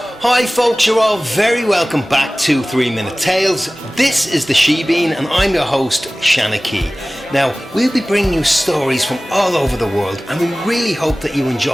Hi folks, you're all very welcome back to 3 Minute Tales. This is the She-Bean and I'm your host, Shanna Key. Now, we'll be bringing you stories from all over the world and we really hope that you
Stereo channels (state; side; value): normal; both; correlation 0.98